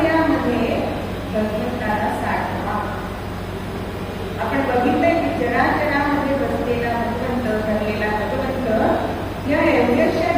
आपण बघितलंय की जराजरामध्ये बसलेला भगवंत, भरलेला भगवंत या एवढ्याशा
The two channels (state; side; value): identical; both; correlation 1.00